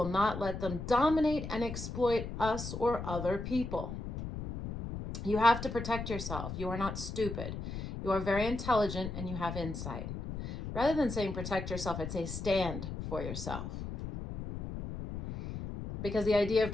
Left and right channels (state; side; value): noise; left; rumble, 6 dB below the sound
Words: not let them dominate and exploit us or other people. You have to protect yourself. You are not stupid. You are very intelligent and you have insight. Rather than saying protect yourself, I'd say stand for yourself. Because the idea of